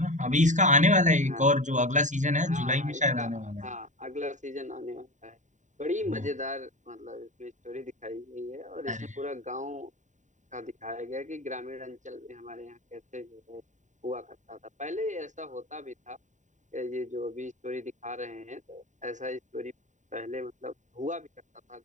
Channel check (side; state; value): left; late; 0.36 ms